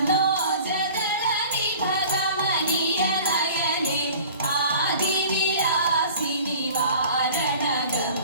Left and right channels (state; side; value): inverted; both; correlation -0.44